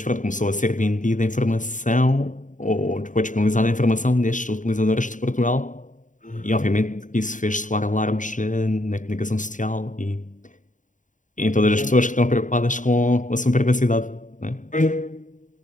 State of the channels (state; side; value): late; right; 0.37 ms